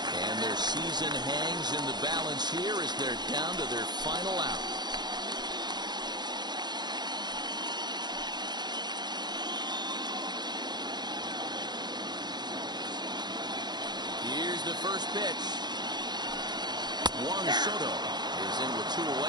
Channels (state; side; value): late; left; 0.21 ms